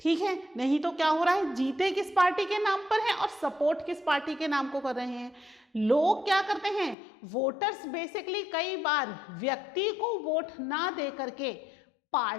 है, नहीं तो क्या हो रहा है, जीते किस पार्टी के नाम पर है और सपोर्ट किस पार्टी के नाम को कर रहे हैं। लोग क्या करते हैं, वोटर्स बेसिकली कई बार व्यक्ति को वोट ना दे करके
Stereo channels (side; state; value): right; drops out; at 7.0 s